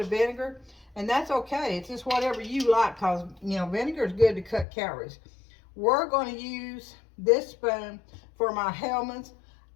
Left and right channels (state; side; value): drops out; right; at 4.7 s